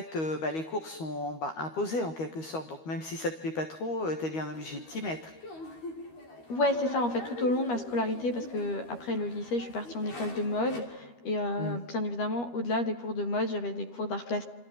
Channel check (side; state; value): right; late; 13 ms